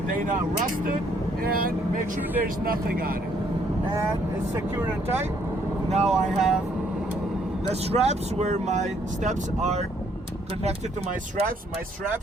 They're not rusted, and make sure there's nothing on it. And it's secure and tight. Now I have the straps where my steps are connected to my straps. My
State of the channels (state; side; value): normal; both; correlation 0.67